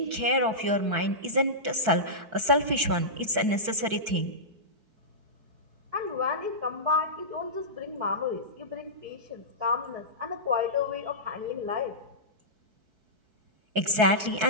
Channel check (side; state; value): left; late; 4.6 ms